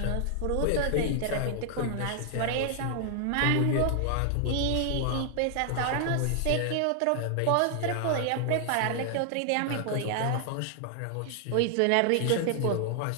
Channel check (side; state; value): both; different; correlation 0.00